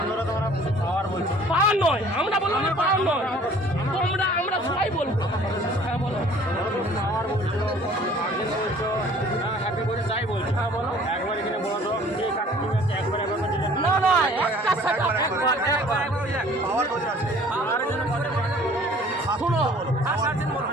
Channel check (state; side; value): normal; both; correlation 0.52